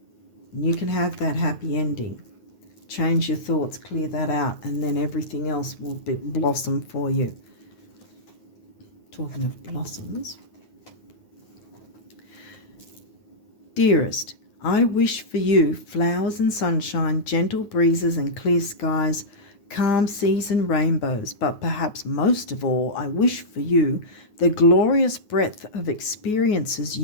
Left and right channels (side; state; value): right; late; 9.5 ms